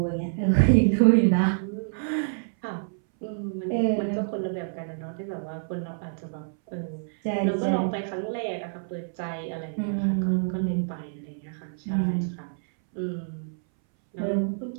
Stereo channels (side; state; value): left; silent; 60 dB below the other